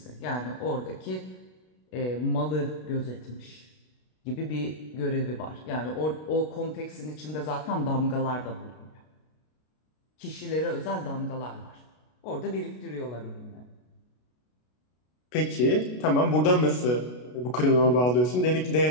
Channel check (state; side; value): late; right; 33 ms